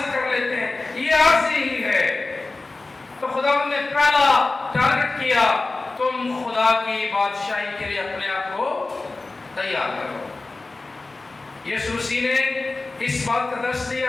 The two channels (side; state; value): right; quieter; 3.4 dB